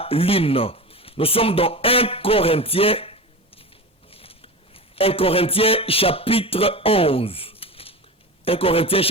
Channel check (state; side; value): normal; both; correlation 0.27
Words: lune. Nous sommes dans 1 Corinthiens chapitre 11. 1 Corinthiens